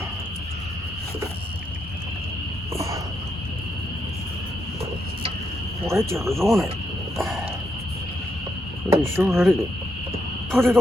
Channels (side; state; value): both; normal; correlation 0.80